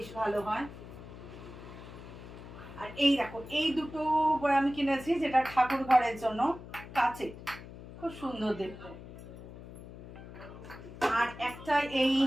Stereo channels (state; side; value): noise; left; hum, 14 dB below the sound